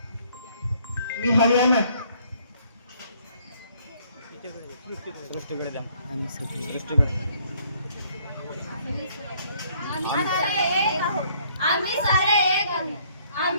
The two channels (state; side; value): inverted; both; correlation -0.63